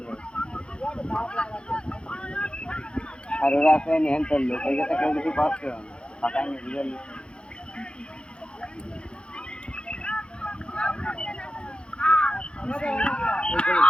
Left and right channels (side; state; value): right; late; 0.055 ms